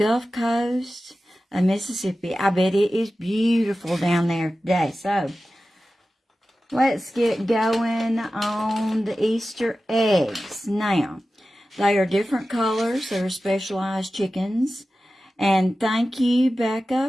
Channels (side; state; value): both; normal; correlation 0.94